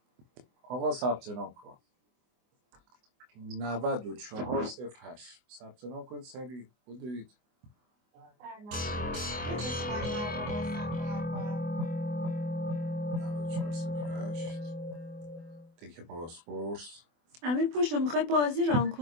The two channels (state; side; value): late; left; 24 ms